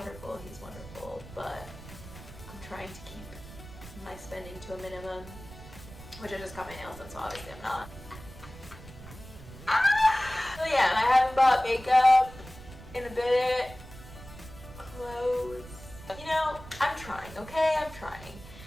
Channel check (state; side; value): noise; right; rumble, 16 dB below the sound